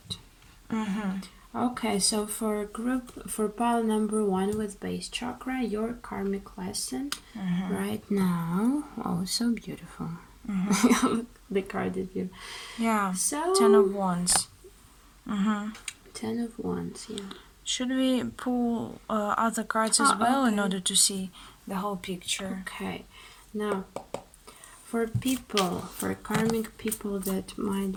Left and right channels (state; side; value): identical; both; correlation 1.00